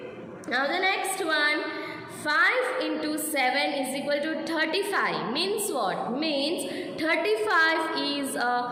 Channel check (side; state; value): both; identical; correlation 1.00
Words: Now the next one, 5 into 7 is equal to 35. Means what? Means 35 is